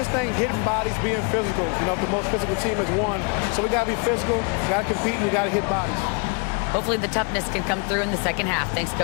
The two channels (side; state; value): right; quieter; 36.1 dB